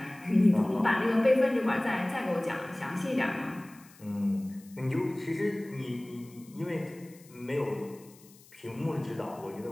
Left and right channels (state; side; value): noise; left; hiss, 25 dB below the sound